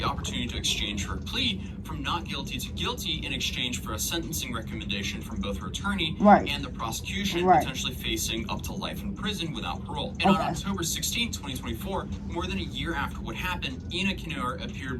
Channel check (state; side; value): identical; both; correlation 1.00